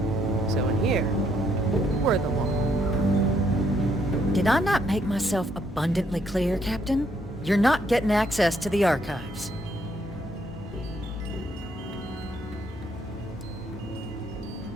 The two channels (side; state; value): both; normal; correlation 0.71